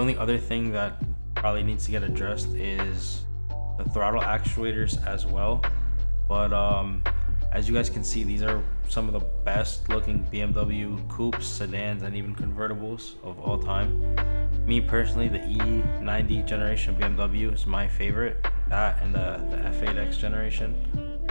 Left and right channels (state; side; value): inverted; both; correlation -1.00